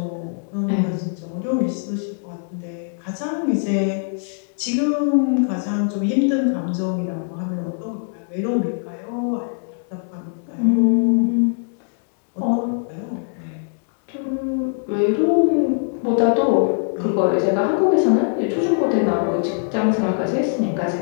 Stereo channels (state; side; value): silent; right; digital silence